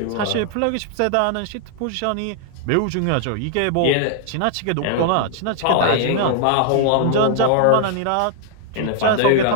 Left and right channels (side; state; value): both; different; correlation 0.00